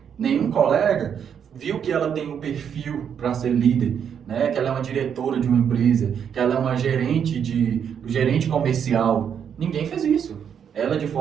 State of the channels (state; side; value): quieter; left; 8.0 dB